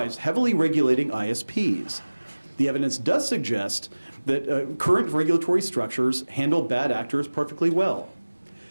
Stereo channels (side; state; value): both; inverted; correlation -1.00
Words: heavily regulating ISPs. The evidence does suggest that current regulatory structures handle bad actors perfectly well.